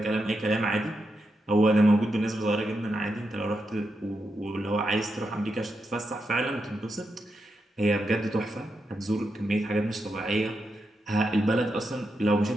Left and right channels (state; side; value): normal; both; correlation 0.85